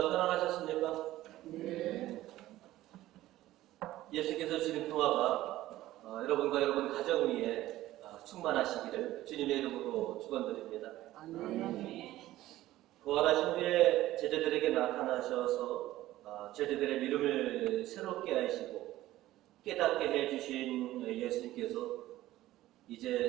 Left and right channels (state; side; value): quieter; left; 15.4 dB